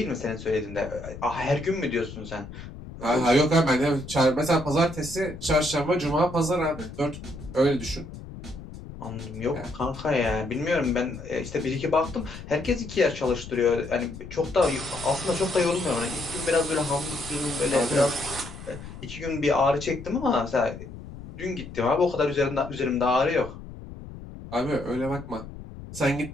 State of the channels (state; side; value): noise; left; rumble, 13 dB below the sound